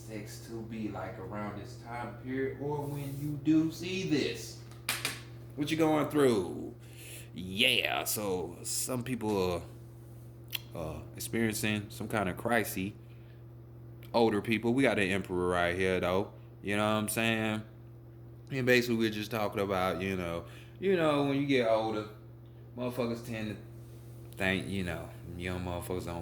to be like around this time period, or when you do see this. What you going through? Yeah, so some people are experiencing some kind of crisis. Older people, we got an emperor right here though. You know what I'm saying? And basically we're just talking about, when you get older, motherfuckers tend to think, young motherfuckers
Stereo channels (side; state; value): both; identical; correlation 1.00